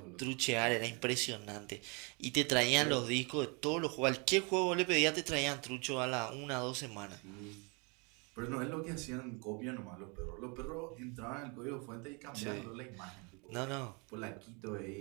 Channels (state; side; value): quieter; left; 32.1 dB